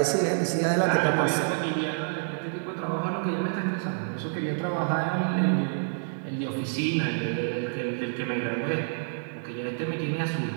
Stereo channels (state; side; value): silent; left; digital silence